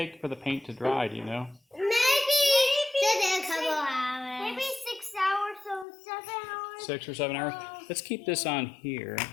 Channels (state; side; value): drops out; right; at 5.9 s